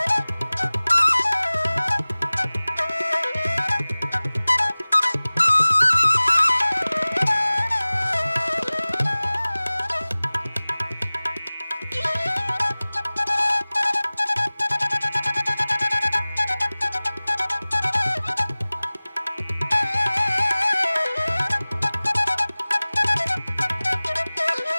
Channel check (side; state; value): both; inverted; correlation -0.99